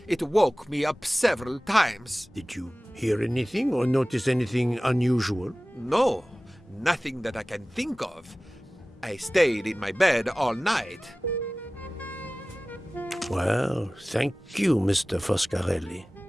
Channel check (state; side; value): normal; both; correlation 0.97